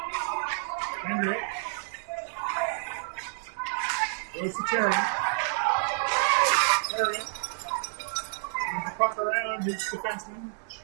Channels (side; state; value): left; silent; digital silence